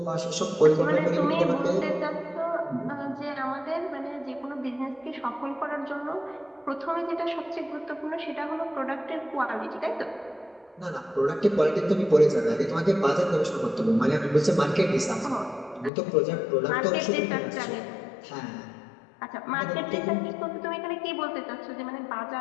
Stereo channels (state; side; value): drops out; right; at 15.9 s